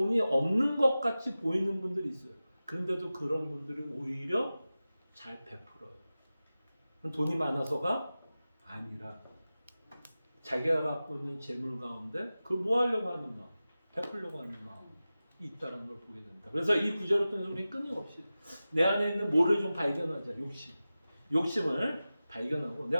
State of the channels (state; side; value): inverted; both; correlation -0.95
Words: 없는 것 같이 보이는 분들이 있어요. 그런데도 그런 분들이 오히려 잘 베풀어요. 돈이 많아서가 아니라 자기가 갖고 있는 재물 가운데 그걸 뭐 하려고 하는 마음, 베풀려고 하는 마음이 있다는 걸 보게 된다. 그래서 이 구절을 통해서 우리는 끊임없이 내 안에 있는 뭐를 좀 발견하자. 욕심을 발견하고